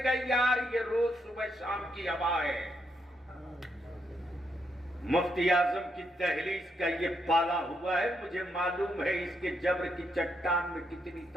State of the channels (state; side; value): normal; both; correlation 0.79